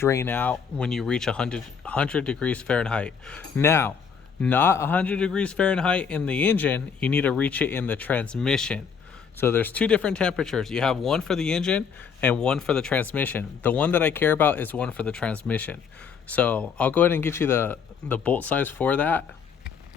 out when you reach 100 degrees Fahrenheit. Now, not 100 degrees Fahrenheit in the engine, you need to reach it in the transmission. So there's 2 different temperatures. You have one for the engine and one for the transmission. The one that I care about is one for the transmission. So I'll go ahead and get you the bolt size for that.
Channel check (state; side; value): quieter; right; 6.5 dB